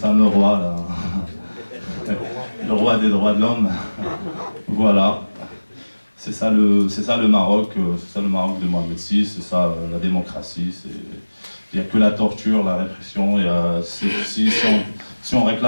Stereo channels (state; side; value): inverted; both; correlation -1.00